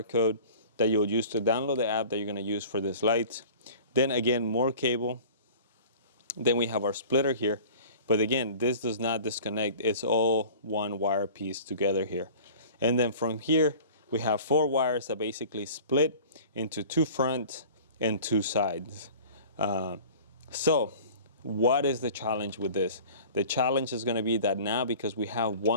code that you'll use to download the app that you're going to use for this light. Then again, more cable. Then we have our splitter here, but again, this does not disconnect. It's all one wire piece together here. And then from here, we have 4 wires that basically split into 2 front and 2 sides. So what is the challenge with this? The challenge is going to be that now, because we have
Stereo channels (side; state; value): both; inverted; correlation -0.43